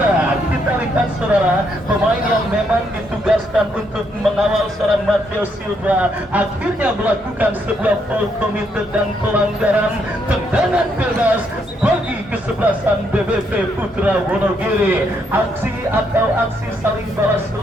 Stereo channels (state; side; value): normal; both; correlation 0.75